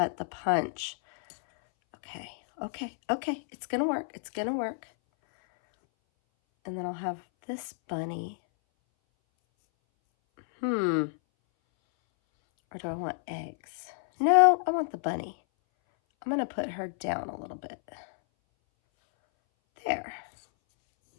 the punch. Okay. It's going to work. It's going to work. And then I'll have this bunny. Or do I want eggs? No, I want the bunny. I'm going to put her down a little bit. There.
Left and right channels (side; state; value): right; silent; 58 dB below the other